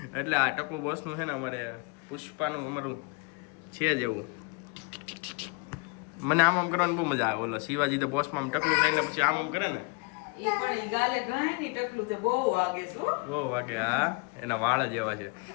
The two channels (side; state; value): right; quieter; 30.9 dB